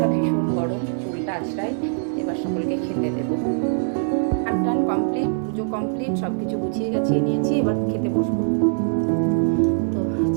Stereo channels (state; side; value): silent; left; 56 dB below the other